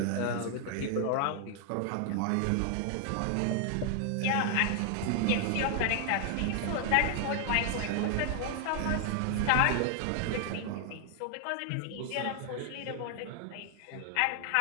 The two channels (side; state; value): both; different; correlation 0.00